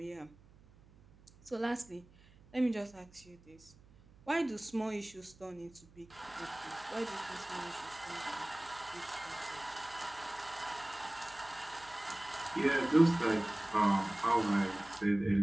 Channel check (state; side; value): noise; right; hum, 25 dB below the sound